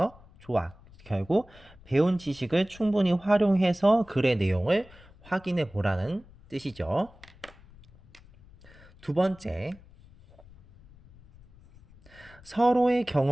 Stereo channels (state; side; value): noise; left; rumble, 24 dB below the sound